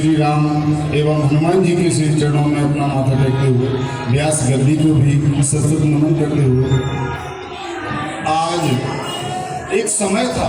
राम एवं हनुमान जी के श्री चरणों में अपना माथा टेकते हुए, व्यास गद्दी को भी सतत नमन करते हुए, आज एक समय था,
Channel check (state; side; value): identical; both; correlation 1.00